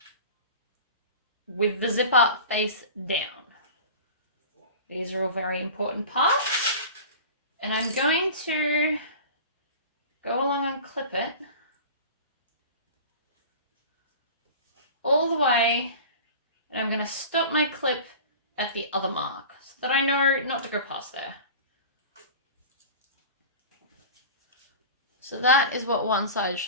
with the zipper face down. These are all very important parts. And I'm going to go along and clip it all the way, and I'm going to stop my clip at the other mark so that I know not to go past there. So that is what one side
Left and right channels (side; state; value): both; inverted; correlation -0.36